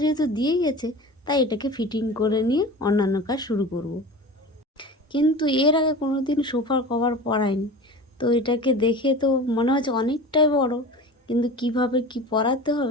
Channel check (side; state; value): both; normal; correlation 0.35